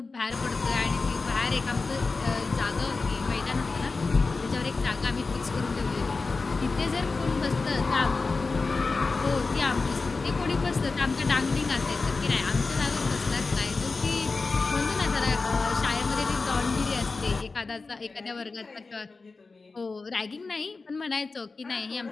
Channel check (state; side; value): quieter; right; 4.0 dB